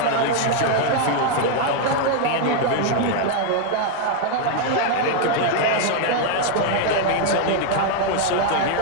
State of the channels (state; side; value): different; both; correlation 0.00